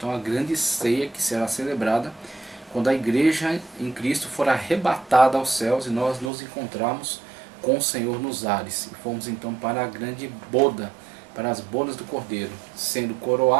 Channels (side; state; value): left; drops out; at 6.3 s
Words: a grande ceia que será celebrada quando a igreja em Cristo for arrebatada aos céus e nós nos encontrarmos com o Senhor nos ares. E fomos então para a grande boda, para as bodas do Cordeiro, sendo